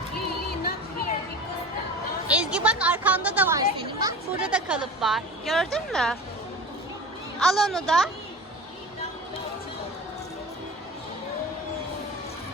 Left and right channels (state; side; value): normal; both; correlation 0.35